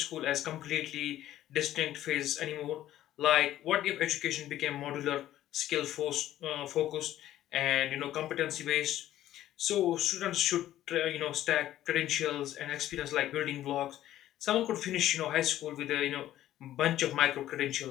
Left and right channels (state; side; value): quieter; right; 13.1 dB